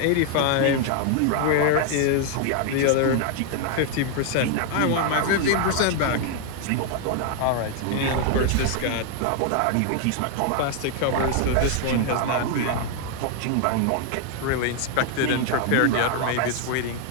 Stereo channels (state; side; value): different; both; correlation 0.00